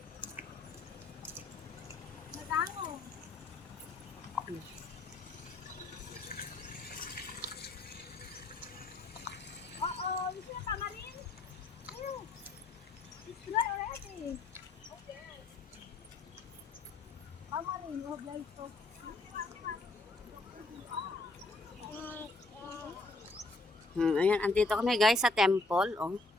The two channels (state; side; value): quieter; right; 3.2 dB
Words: Ayan, andito kami guys sa temple, oh.